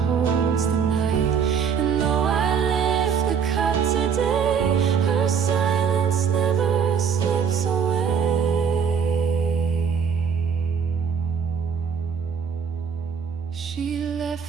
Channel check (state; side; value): quieter; left; 6.8 dB